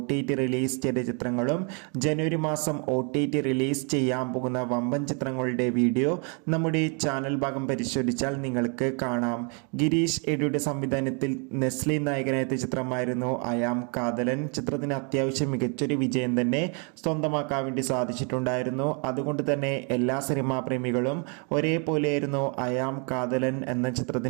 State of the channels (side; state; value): left; quieter; 36.9 dB